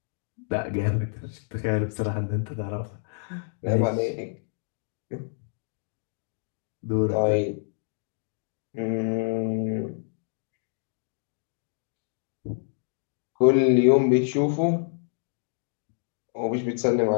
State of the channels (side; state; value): right; silent; digital silence